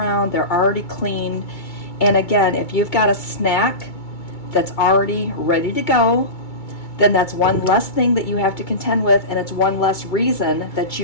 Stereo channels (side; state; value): right; late; 2.2 ms